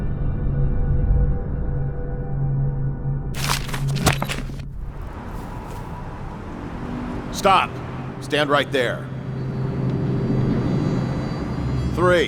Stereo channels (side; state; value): both; identical; correlation 1.00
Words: Stop. Stand right there.